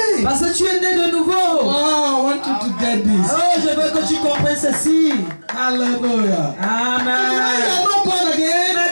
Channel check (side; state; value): both; inverted; correlation -1.00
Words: Parce que tu es né de nouveau. Wow, I want you to get this. Oh, je veux que tu comprennes ceci. Hallelujah. When you Amen. are not born again, Mais